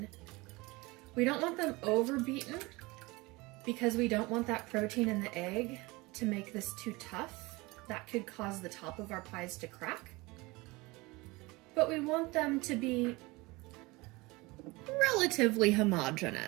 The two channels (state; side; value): quieter; left; 23.3 dB